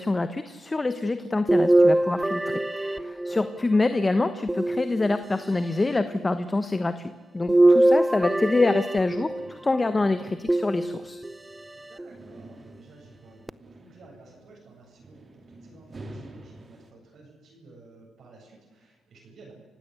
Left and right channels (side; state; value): both; normal; correlation 0.96